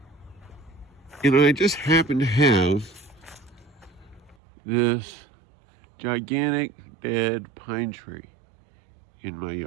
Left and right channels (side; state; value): left; drops out; at 4.4 s